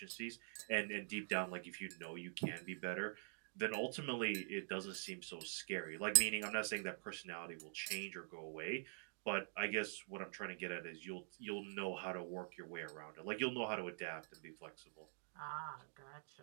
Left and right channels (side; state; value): left; silent; digital silence